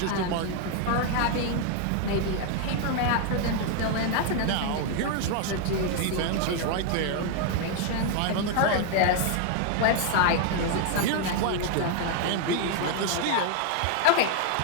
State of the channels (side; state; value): both; different; correlation 0.00